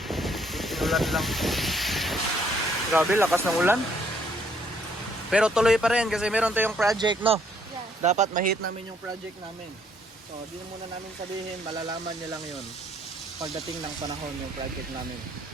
Inulan lang. Grabe, lakas ng ulan. Pero tuloy pa rin kasi meron tayong project, no? Yes. Dapat ma-hit namin yung project namin. So, di na muna namin sabihin, malalaman nyo lang yun pagdating ng panahon yung project namin.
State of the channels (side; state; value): both; normal; correlation 0.67